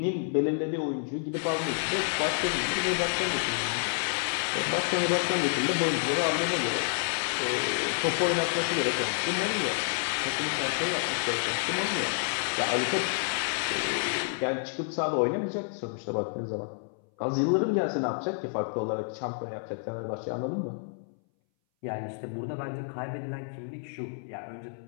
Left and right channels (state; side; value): silent; right; 58 dB below the other